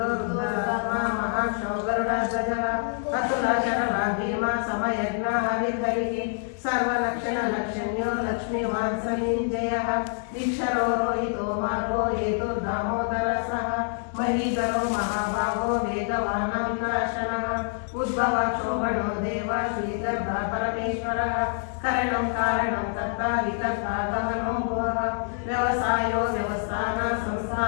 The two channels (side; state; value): right; silent; 61 dB below the other